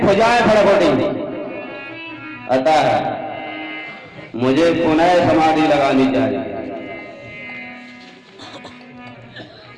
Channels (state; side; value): identical; both; correlation 1.00